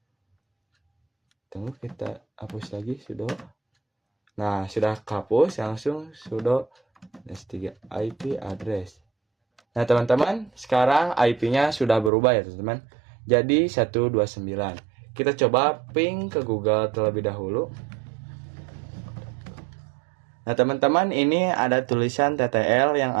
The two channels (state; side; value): drops out; left; at 12.1 s